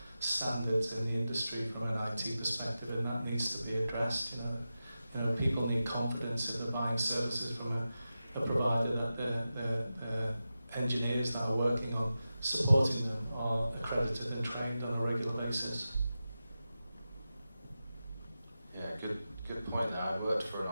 standards in the industry from an IT perspective, and that needs to be addressed. People need confidence if they're buying services from a provider that the engineers that are working on supporting them are accredited and trained on a regular basis. Yeah, good point there. I worked for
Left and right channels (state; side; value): inverted; both; correlation -0.93